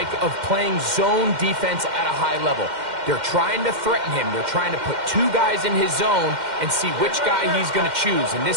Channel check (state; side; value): late; left; 2.1 ms